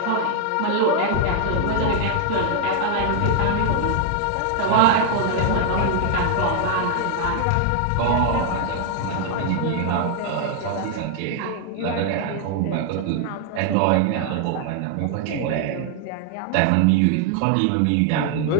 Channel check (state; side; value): different; both; correlation 0.00